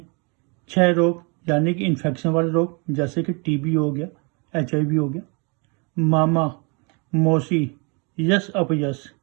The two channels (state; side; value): quieter; left; 32.7 dB